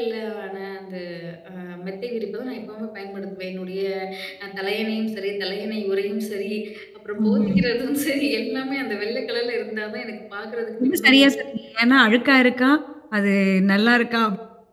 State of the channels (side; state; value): both; identical; correlation 1.00